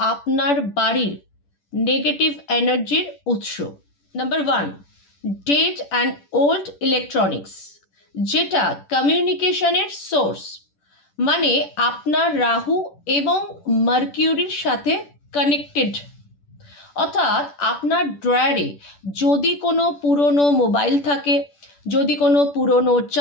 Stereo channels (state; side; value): late; right; 10 ms